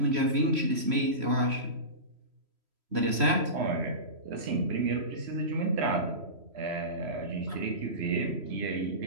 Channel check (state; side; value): late; left; 3.1 ms